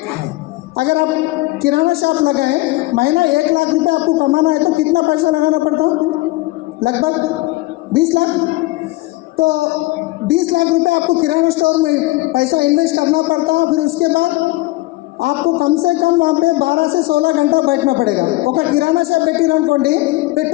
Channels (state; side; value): quieter; right; 20.3 dB